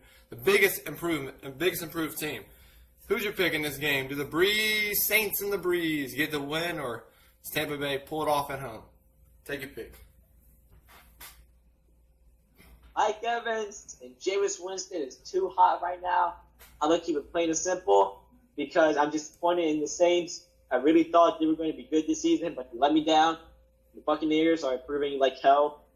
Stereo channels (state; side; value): identical; both; correlation 1.00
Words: The biggest improved team. Who's your pick in this game? Do the Saints and the Breeze get the win, or does Tampa Bay pull it off at home? Take your pick. Mike Evans and Jameis Winston is too hot right now. I'm going to keep it plain and simple because I'm disappointed in the Saints. I really thought they were going to be good this season, but they let me down. The Buccaneers are improving like hell.